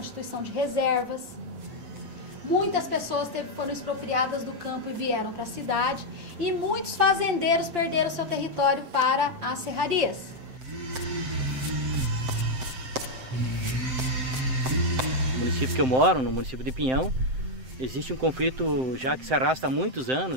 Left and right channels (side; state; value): left; late; 7.7 ms